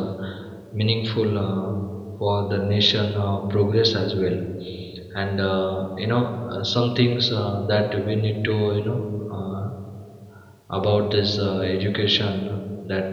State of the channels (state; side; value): identical; both; correlation 1.00